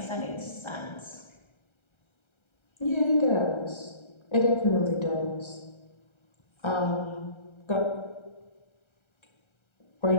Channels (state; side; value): late; right; 1.3 ms